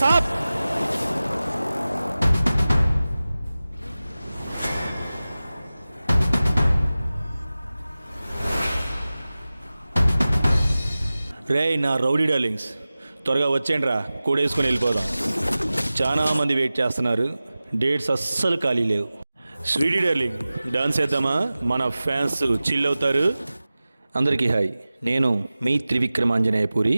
సాబ్. రే నా రౌడీ డార్లింగ్స్, త్వరగా వచ్చేయండిరా, కూడేసుకొని వెళ్ళిపోదాం. చాలా మంది వెయిట్ చేస్తున్నారు, డేట్స్ అస్సలు ఖాళీ లేవు. స్వీటీ డార్లింగ్, డాన్స్ చేద్దామా? మన ఫ్యాన్స్ చిల్ అవుతారు. అందరికీ హాయ్, నేను మీ త్రివిక్రమాంజనేయపూరి.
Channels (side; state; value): both; inverted; correlation -0.97